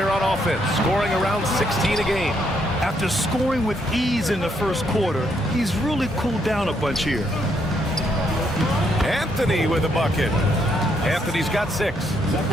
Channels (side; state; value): both; normal; correlation 0.74